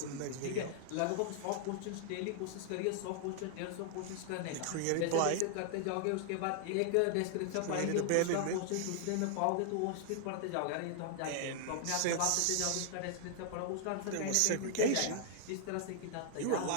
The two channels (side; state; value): both; different; correlation 0.00